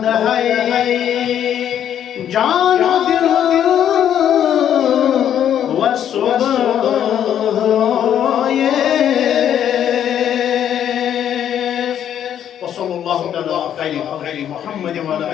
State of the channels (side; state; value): right; quieter; 9.9 dB